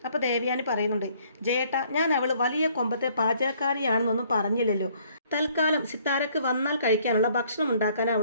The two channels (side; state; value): both; inverted; correlation -0.62